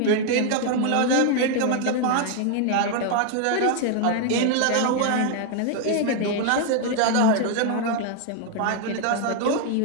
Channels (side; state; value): both; different; correlation 0.00